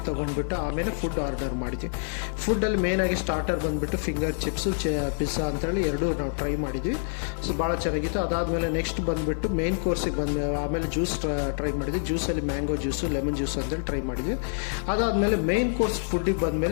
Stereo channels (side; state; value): right; silent; 56 dB below the other